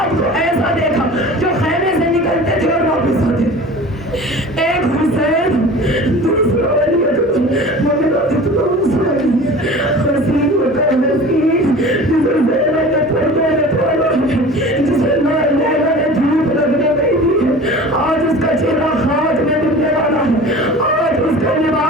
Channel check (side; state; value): both; normal; correlation 0.40